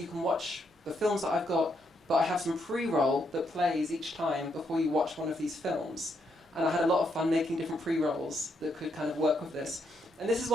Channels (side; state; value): both; normal; correlation 0.77